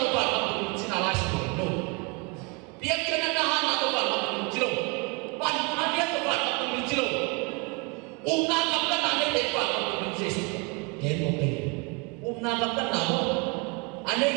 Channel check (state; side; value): quieter; left; 30.2 dB